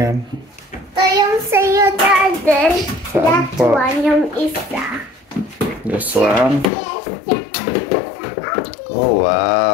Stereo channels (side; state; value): right; drops out; at 6.7 s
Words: Ito yung sa'yo, Daddy. That po? one, yung isa. This one. Oh,